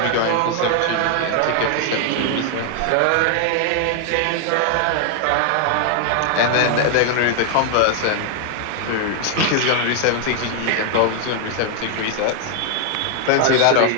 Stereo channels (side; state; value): both; different; correlation 0.00